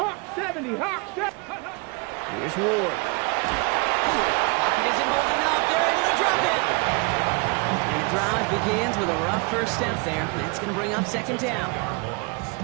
70, Hawk 70. Here's Ward. Pocket isn't holding up. They're able to drop it. And the drive begins with a rough first step there. That's going to bring up 2nd down.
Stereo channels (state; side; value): quieter; left; 29.7 dB